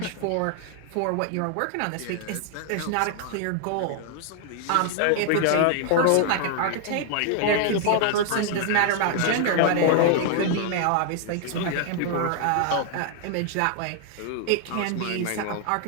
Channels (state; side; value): different; both; correlation 0.00